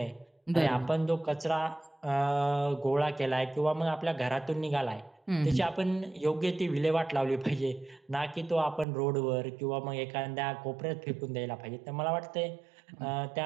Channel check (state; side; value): drops out; left; at 8.8 s